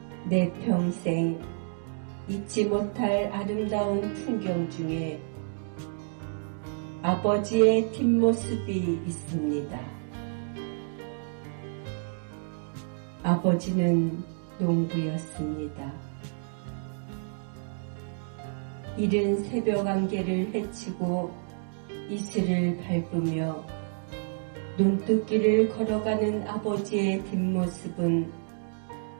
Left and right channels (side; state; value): left; silent; digital silence